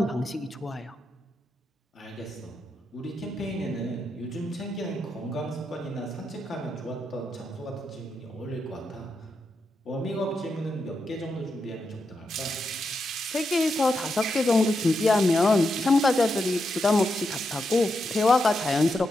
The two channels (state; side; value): normal; both; correlation 0.85